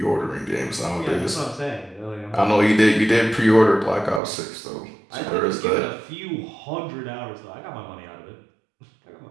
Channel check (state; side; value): drops out; left; at 4.2 s